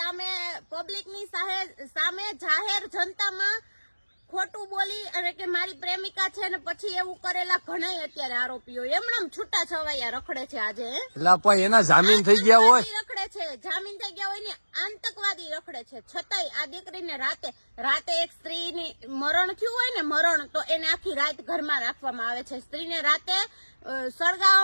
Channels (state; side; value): inverted; both; correlation -1.00